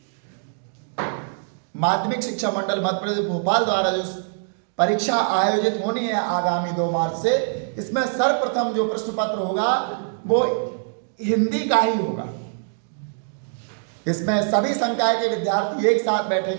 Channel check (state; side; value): silent; left; digital silence